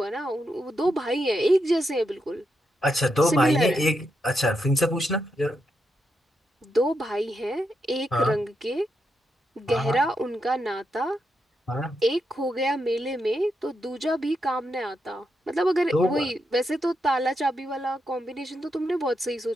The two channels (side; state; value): both; normal; correlation 0.83